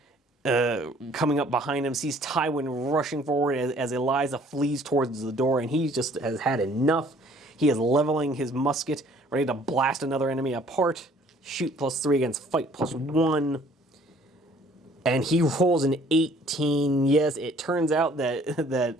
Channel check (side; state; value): both; normal; correlation 0.57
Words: coming up behind him. Sees Tywin rushing forward as Eliza flees towards the door, and he just has had enough. He is leveling his musket, ready to blast another enemy apart. Shoot +3 against fight +1. And he rolls an 18. Yes, it turns out